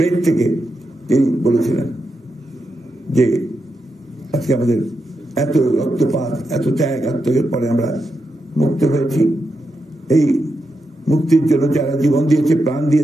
থেকে তিনি বলেছিলেন যে আজকে আমাদের এত রক্তপাত, এত ত্যাগ আত্মত্যাগের পরে আমরা মুক্ত হয়েছি। এই মুক্তির জন্য যারা জীবন দিয়েছে, প্রাণ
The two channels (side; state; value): both; normal; correlation 0.86